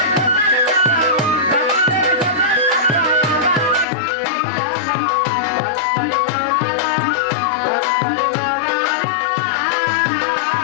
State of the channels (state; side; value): drops out; right; at 3.9 s